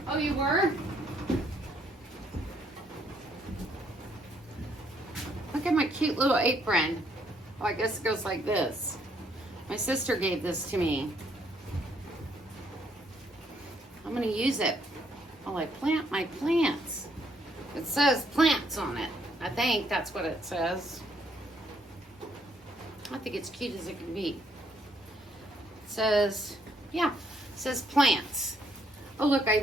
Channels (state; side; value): normal; both; correlation 0.70